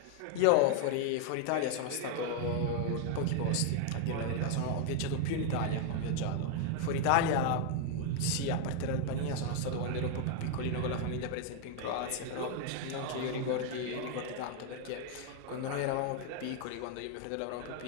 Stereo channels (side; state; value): both; different; correlation 0.00